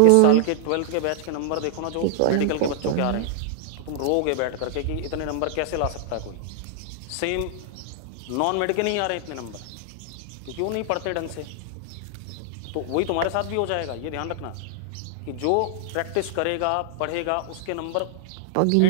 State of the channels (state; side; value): different; both; correlation -0.01